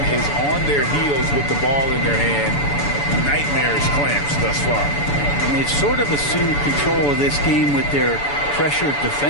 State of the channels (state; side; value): late; right; 7.0 ms